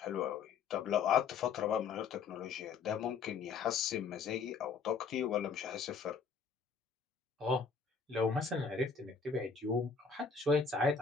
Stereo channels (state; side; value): quieter; right; 5.5 dB